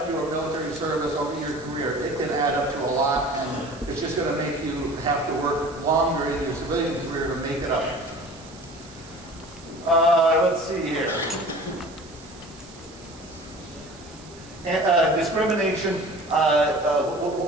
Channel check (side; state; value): right; noise; hiss, 21 dB below the sound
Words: your military service over your career, it can add up to a lot, and it's just going to make you have to work longer in your civilian career to make it up. Let's see here. Discrimination.